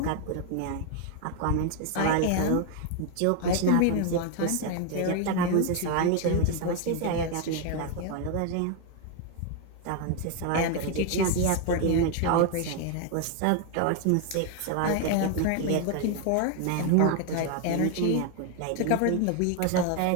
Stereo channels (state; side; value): different; both; correlation 0.01